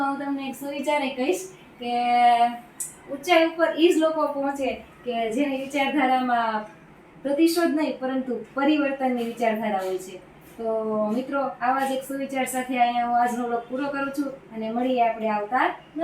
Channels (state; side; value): identical; both; correlation 1.00